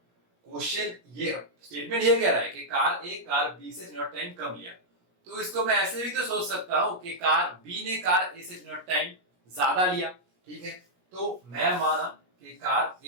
क्वेश्चन ये स्टेटमेंट ये कह रहा है कि कार A कार B से t naught टाइम कम लिया, तो इसको मैं ऐसे भी तो सोच सकता हूं कि कार B ने कार A से t naught टाइम ज्यादा लिया। ठीक है, तो मैं माना कि कार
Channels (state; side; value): late; left; 17 ms